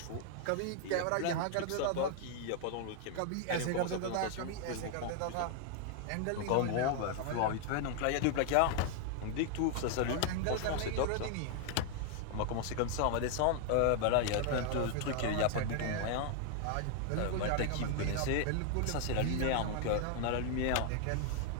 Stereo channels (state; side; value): different; both; correlation 0.00